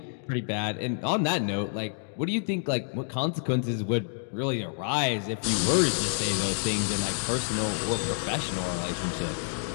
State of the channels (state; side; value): silent; right; digital silence